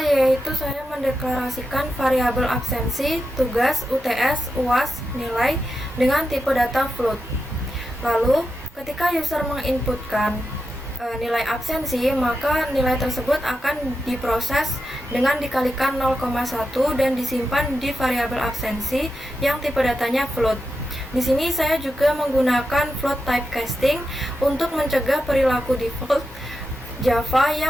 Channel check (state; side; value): normal; both; correlation 0.88